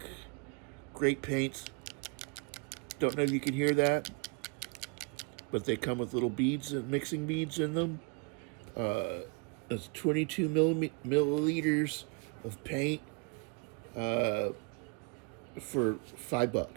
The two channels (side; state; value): left; quieter; 32.9 dB